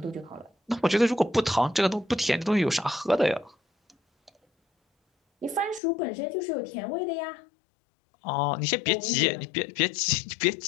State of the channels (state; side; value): drops out; right; at 5.8 s